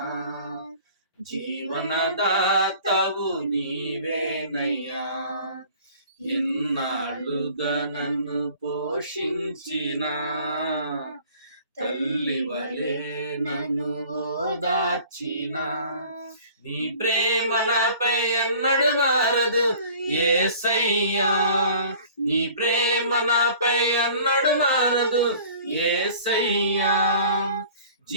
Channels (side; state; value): both; inverted; correlation -0.49